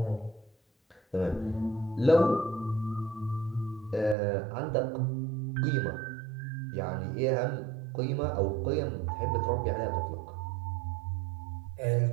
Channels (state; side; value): drops out; left; at 4.2 s